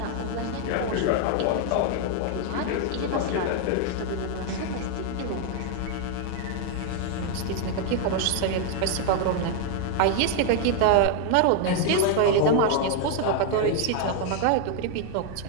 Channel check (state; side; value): different; both; correlation 0.00